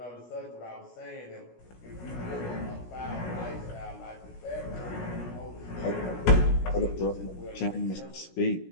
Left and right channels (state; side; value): late; right; 17 ms